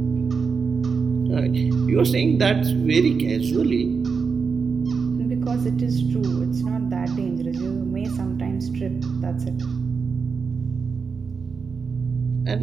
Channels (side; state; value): left; quieter; 5.4 dB